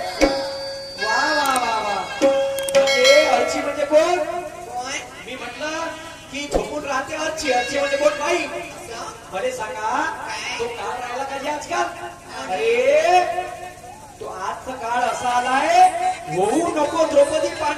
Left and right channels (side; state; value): both; identical; correlation 1.00